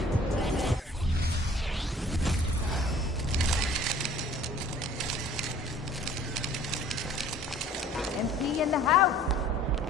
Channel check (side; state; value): both; normal; correlation 0.51